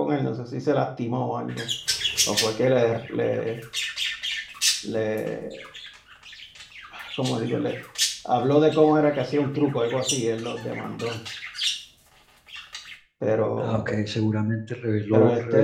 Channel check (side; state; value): both; identical; correlation 1.00